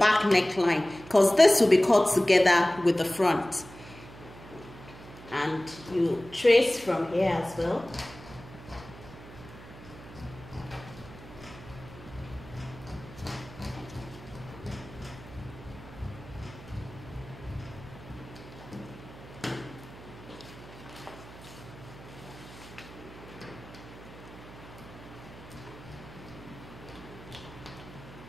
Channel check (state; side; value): noise; right; hum, 17 dB below the sound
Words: neckline, because this will be cut together with the front. And you trace from here as well.